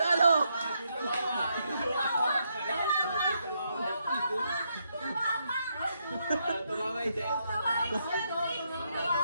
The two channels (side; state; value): both; inverted; correlation -0.78